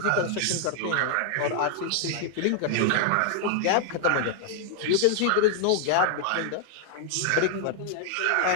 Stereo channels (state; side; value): different; both; correlation 0.00